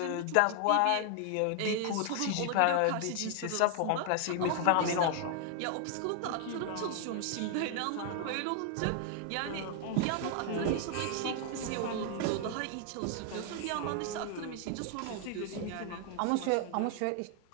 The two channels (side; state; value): both; different; correlation 0.00